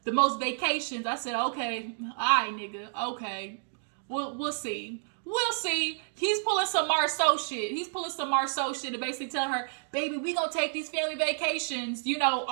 the most vacations. I said, okay, all right, nigga, okay. We'll see. We'll see. He's pulling some Marceau shit. To basically tell her, baby, we gonna take these family vacations.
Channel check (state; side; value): silent; left; digital silence